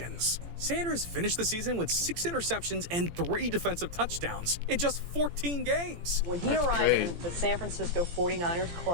Sanders finished the season with 6 interceptions and 3 defensive touchdowns in just 14 games. When he arrived in the San Francisco 49ers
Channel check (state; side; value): late; left; 17 ms